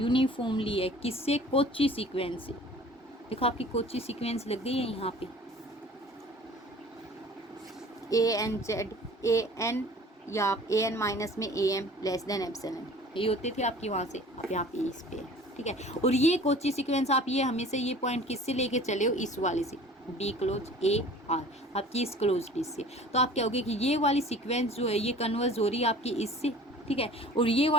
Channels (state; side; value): normal; both; correlation 0.46